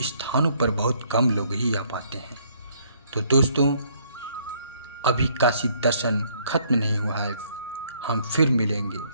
स्थानों पर बहुत कम लोग ही आ पाते हैं। तो दोस्तों अभी काशी दर्शन खत्म नहीं हुआ है, हम फिर मिलेंगे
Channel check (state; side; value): inverted; both; correlation -0.66